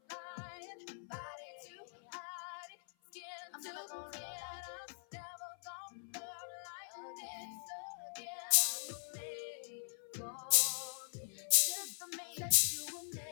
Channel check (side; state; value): right; silent; 50 dB below the other